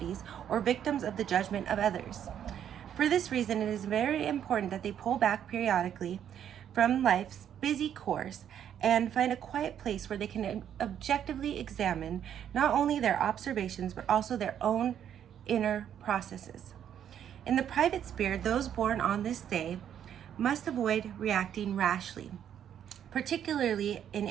or victims of the judgment of others. For this reason, it is very important that they pull back periodically from life's busy course and find a quiet place where they can objectively examine not only their observations, but also their own inner processes. In the private sphere, those born on this day must avoid reacting rashly, particularly in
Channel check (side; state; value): left; quieter; 9.5 dB